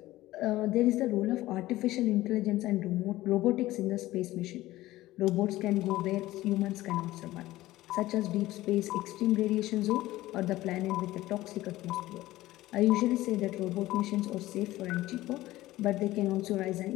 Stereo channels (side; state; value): right; quieter; 16.7 dB